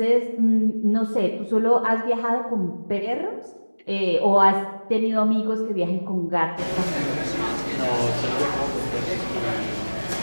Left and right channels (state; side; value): inverted; both; correlation -1.00